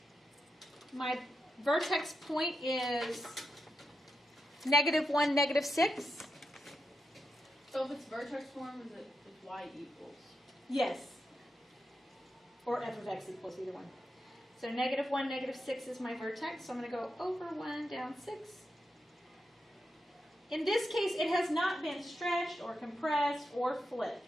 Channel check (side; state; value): both; normal; correlation 0.86